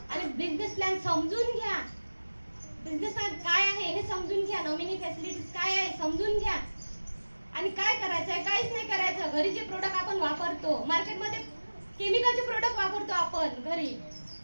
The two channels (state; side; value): inverted; both; correlation -1.00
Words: बिझनेस प्लॅन समजून घ्या. बिझनेस प्लॅन काय आहे हे समजून घ्या. नॉमिनी फॅसिलिटीज काय आहे समजून घ्या. आणि काय करायचंय? काहीच नाही करायचं. घरी जे प्रोडक्ट आपण वापरतो, मार्केटमध्ये केमिकलचे प्रोडक्ट वापरतो आपण घरी,